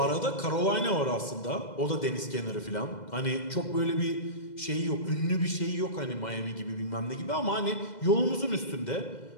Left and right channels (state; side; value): late; right; 2.0 ms